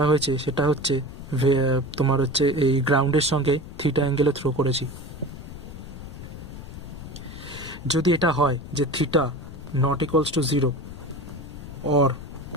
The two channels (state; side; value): noise; left; rumble, 12 dB below the sound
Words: হয়েছে সেটা হচ্ছে তোমার হচ্ছে এই গ্রাউন্ডের সঙ্গে থিটা অ্যাঙ্গেলে থ্রো করেছি। যদি এটা হয় যে theta not equals to 0 or